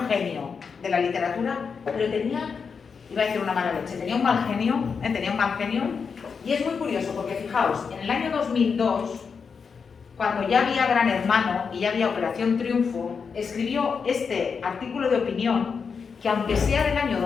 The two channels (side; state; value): right; quieter; 5.8 dB